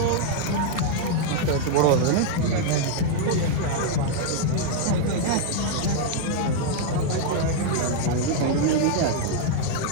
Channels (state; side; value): different; both; correlation 0.00